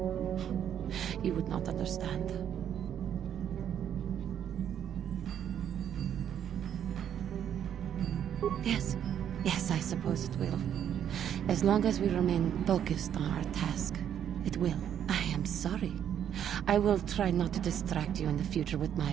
You would not understand. Yes. Yes, I suppose it will. As long as we remain focused on our task, it will. I am sorry. I will try not to distract you in the future with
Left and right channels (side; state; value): left; quieter; 9.5 dB